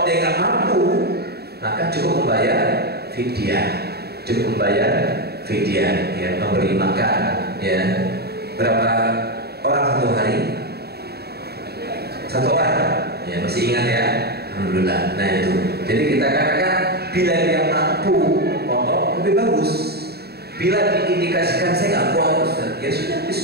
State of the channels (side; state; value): left; late; 0.47 ms